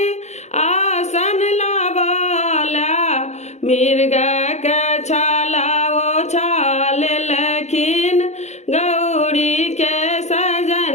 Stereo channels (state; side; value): late; right; 0.33 ms